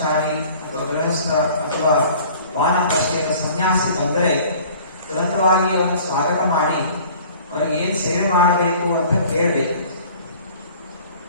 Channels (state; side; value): inverted; both; correlation -0.48